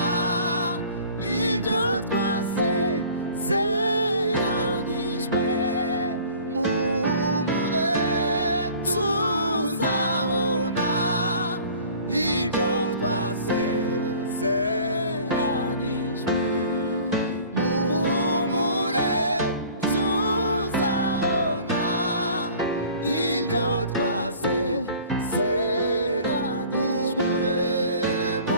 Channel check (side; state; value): both; inverted; correlation -0.48